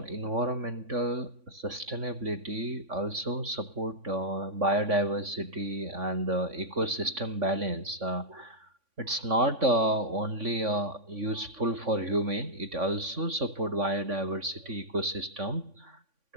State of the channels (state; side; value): late; left; 3.5 ms